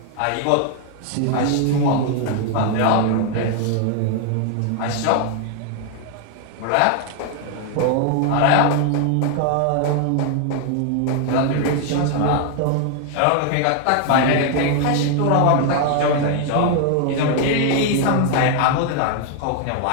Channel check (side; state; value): both; different; correlation 0.00